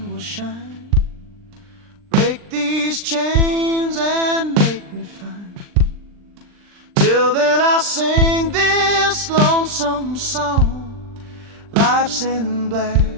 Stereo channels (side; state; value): left; late; 39 ms